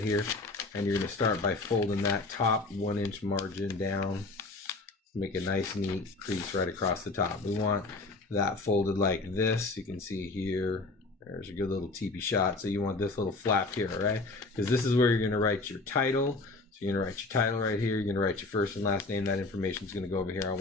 and you're going to start by folding that top 1-inch margin down. Make a nice neat crease right across the top. We want that folded like this. You can see here, there's a good little teepee shot. So you want this little flap here, right? Because this is where you're going to write your title. So you're going to write your title right here. You're going to write your first and last name. That information is going to go over here. I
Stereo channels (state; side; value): quieter; right; 3.4 dB